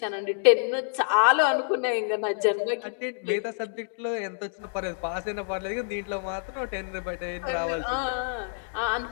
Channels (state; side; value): silent; right; digital silence